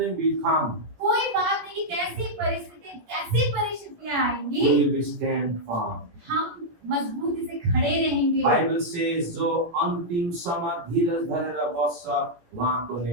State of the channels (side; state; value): left; late; 18 ms